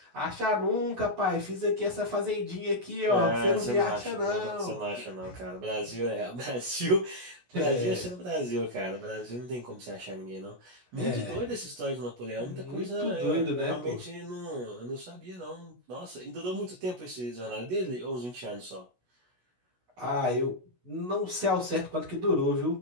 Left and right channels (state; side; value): late; left; 16 ms